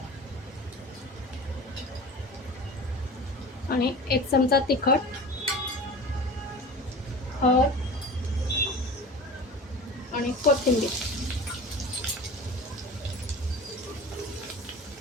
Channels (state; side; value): normal; both; correlation 0.36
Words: आणि 1 चमचा तिखट, हळद आणि कोथिंबीर.